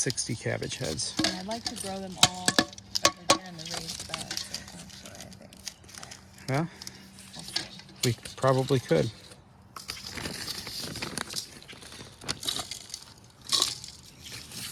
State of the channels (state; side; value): identical; both; correlation 1.00